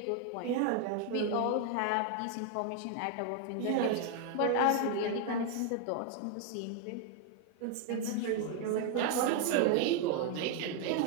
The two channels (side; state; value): both; different; correlation 0.00